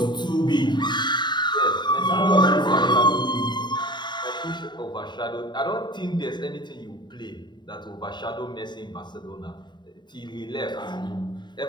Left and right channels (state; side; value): late; right; 0.22 ms